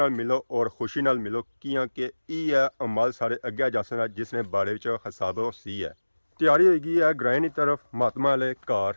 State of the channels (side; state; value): both; inverted; correlation -1.00